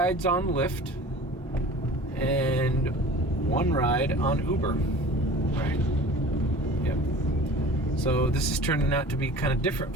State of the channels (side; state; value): both; normal; correlation 0.41